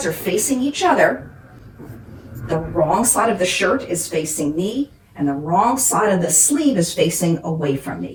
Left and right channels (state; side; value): identical; both; correlation 1.00